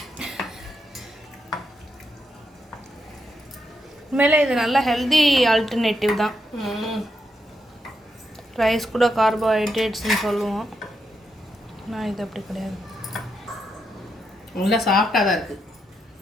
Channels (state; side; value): normal; both; correlation 0.82